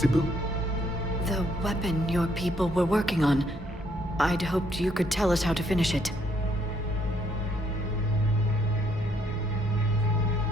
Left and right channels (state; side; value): normal; both; correlation 0.69